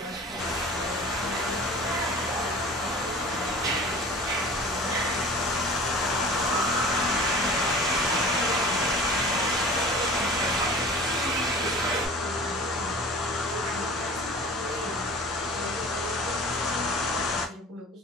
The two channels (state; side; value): normal; both; correlation 0.42